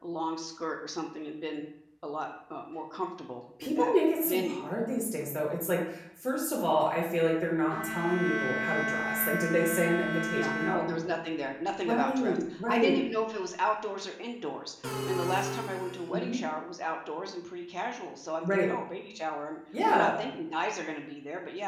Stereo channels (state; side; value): identical; both; correlation 1.00